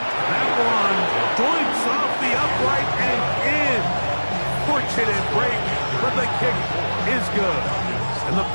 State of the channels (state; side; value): inverted; both; correlation -1.00